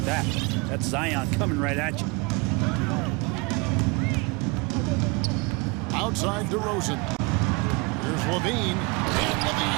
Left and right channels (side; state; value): left; quieter; 27.3 dB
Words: that. That's Zion coming right at you. Outside DeRozan. Here's LaVine. And